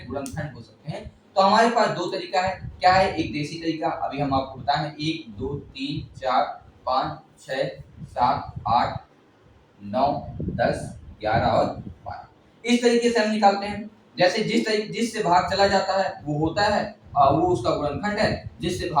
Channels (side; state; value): both; identical; correlation 1.00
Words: गुणनखंड हो सकते हैं, तो हमारे पास 2 तरीका है। क्या है? एक देसी तरीका, अभी हम आपको बताएं 1 2 3 4 5 6 7 8 9 10 11 और 12। इस तरीके से हम निकालते हैं। जैसे जिससे भाग चला जाता है वो होता है, वो उसका गुणनखंड है, जिससे